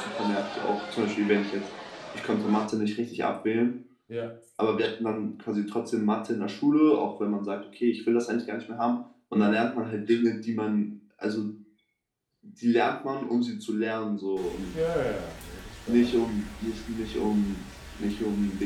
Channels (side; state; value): both; identical; correlation 1.00